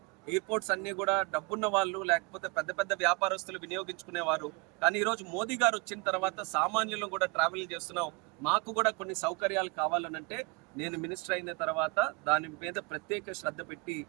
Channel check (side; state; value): left; quieter; 28.4 dB